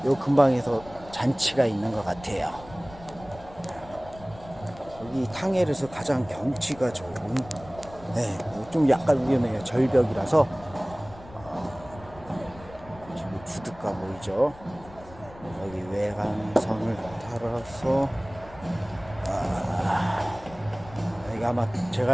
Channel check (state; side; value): noise; left; rumble, 19 dB below the sound